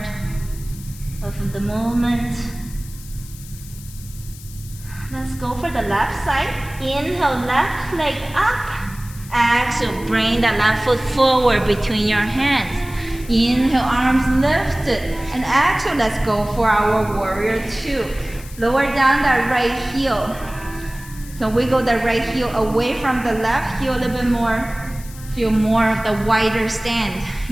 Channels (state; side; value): noise; left; hiss, 18 dB below the sound